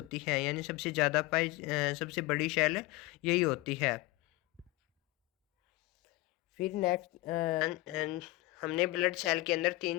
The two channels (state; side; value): quieter; right; 20.4 dB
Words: है, यानी सबसे ज़्यादा सबसे बड़ी सेल यही होती है। फिर नेक्स्ट हमने ब्लड सेल के अंदर